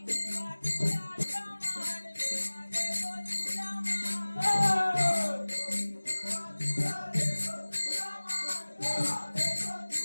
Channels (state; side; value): inverted; both; correlation -1.00